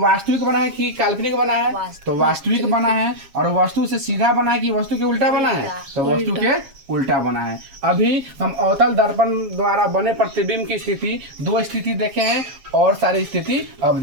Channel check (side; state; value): left; late; 7.4 ms